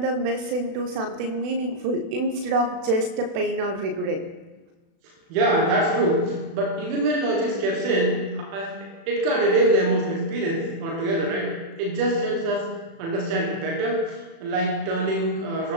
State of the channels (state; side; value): late; left; 36 ms